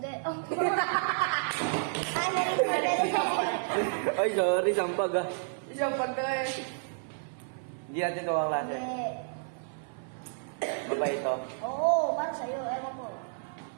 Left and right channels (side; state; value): left; silent; 57 dB below the other